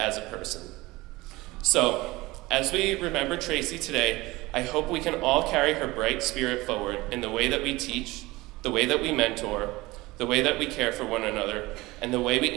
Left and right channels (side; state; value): left; quieter; 20.6 dB